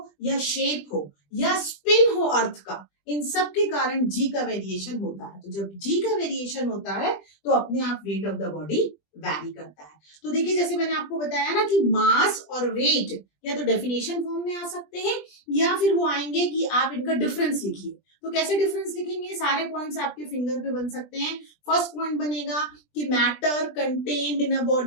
या शेप हो, या स्पिन हो अर्थ का, इन सब के कारण जी का वेरिएशन होता है। तो जब जी का वेरिएशन होता है तो अपने आप weight of the body vary करता है। तो देखिए जैसे मैंने आपको बताया ना कि मास और वेट या तो डेफिनेशन फॉर्म में आ सकते हैं या फिर वो आएंगे कि आप इनका डिफरेंस लिखिए। तो कैसे डिफरेंस लिखेंगे, सारे पॉइंट्स आपके फिंगर पे बन सकते हैं। फर्स्ट पॉइंट बनेगा कि matter contained in a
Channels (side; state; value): right; late; 20 ms